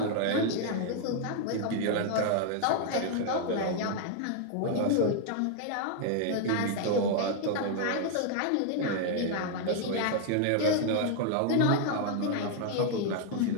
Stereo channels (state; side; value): different; both; correlation 0.00